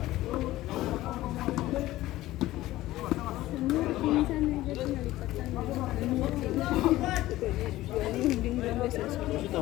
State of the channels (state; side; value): quieter; right; 16.2 dB